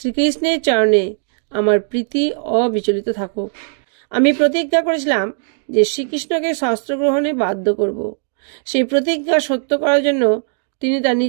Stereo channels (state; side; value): silent; left; 58 dB below the other